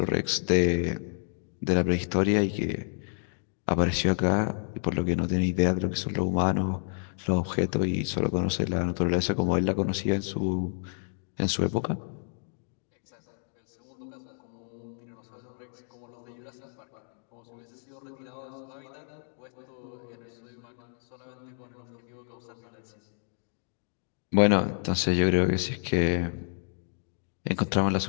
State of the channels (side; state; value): right; silent; digital silence